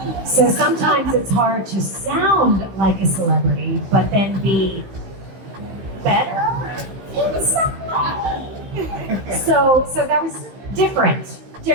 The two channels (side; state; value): left; late; 15 ms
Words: So sometimes it's hard to sound like a celebrity, but then be better. So that was different,